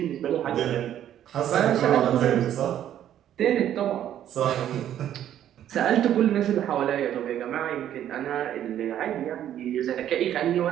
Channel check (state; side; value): quieter; left; 11.0 dB